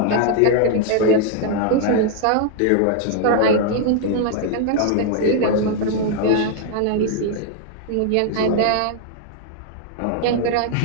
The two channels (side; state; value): both; different; correlation 0.00